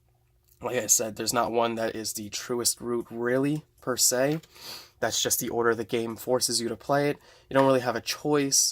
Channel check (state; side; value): identical; both; correlation 1.00